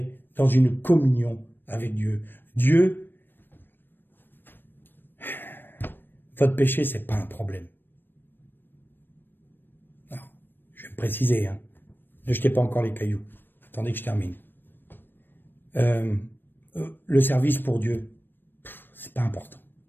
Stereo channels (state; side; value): late; right; 0.095 ms